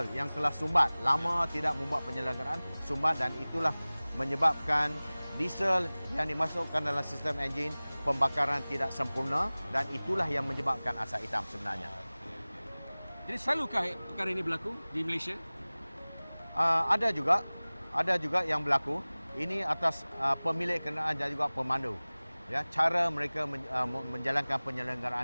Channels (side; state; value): both; inverted; correlation -0.99